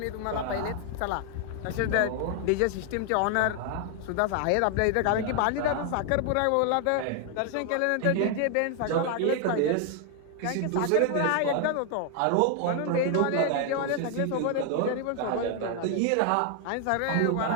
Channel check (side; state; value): both; different; correlation 0.00